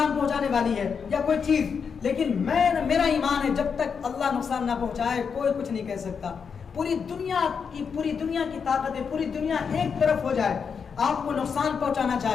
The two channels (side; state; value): right; quieter; 6.2 dB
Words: پہنچانے والی ہے یا کوئی چیز، لیکن میرا ایمان ہے جب تک اللہ نقصان نہ پہنچائے کوئی کچھ نہیں کہہ سکتا. پوری دنیا کی طاقت ہے، پوری دنیا ایک طرف ہو جائے، آپ کو نقصان پہنچانا